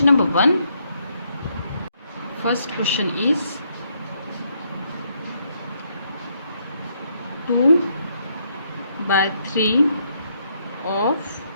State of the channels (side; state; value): both; inverted; correlation -0.74